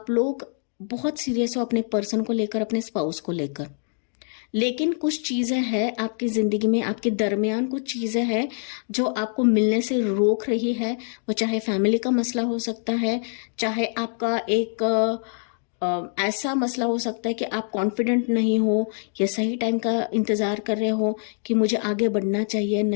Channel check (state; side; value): silent; right; 62 dB below the other